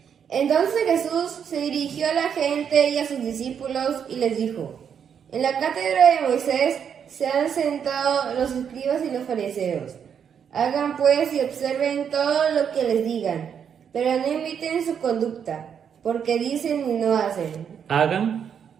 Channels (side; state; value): left; quieter; 7.8 dB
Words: Entonces Jesús se dirigió a la gente y a sus discípulos y les dijo: En la cátedra de Moisés se han sentado los escribas y los fariseos. Hagan pues y observen todo lo que les digan, pero no imiten su conducta, porque dicen y no hacen. Hagan